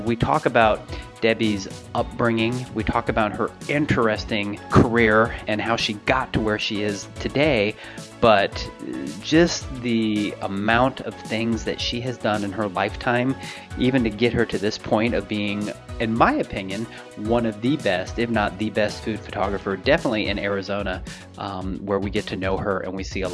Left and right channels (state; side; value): identical; both; correlation 1.00